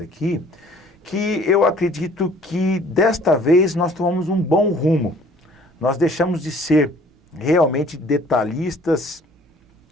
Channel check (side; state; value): both; normal; correlation 0.54